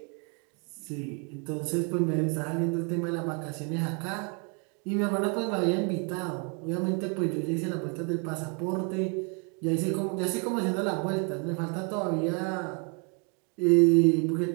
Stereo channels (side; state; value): left; quieter; 36.2 dB